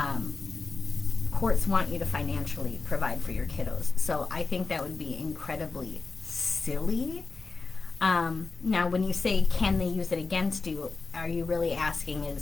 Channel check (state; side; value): quieter; right; 4.1 dB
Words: courts want you to financially provide for your kiddos. So I think that would be incredibly silly Now, when you say, can they use it against you, are you really asking